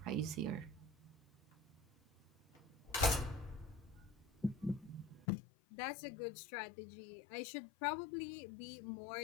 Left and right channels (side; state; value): right; drops out; at 5.2 s